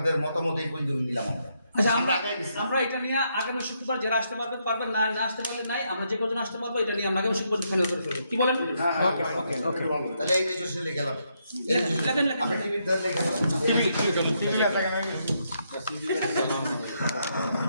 মতামত এই পর্যন্ত নিলাম আমরা। আচ্ছা, আমরা আগাই গেছি। আমরা এটা নিয়ে আগামী শুক্রবার যারা আসতে পারবেন, না আসতে পারলে নাই, আমরা যে কজন আসতে পারবো এটা নিয়ে আমরা আগামী শুক্রবার ফাইনাল করে ফেলবো। কি বলেন? ওকে ওকে ওকে তাহলে এই রেজিস্ট্রেশনে গেলাম, লেখেন। আপনি টিভির ধরে লেখেন।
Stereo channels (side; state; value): both; inverted; correlation -0.77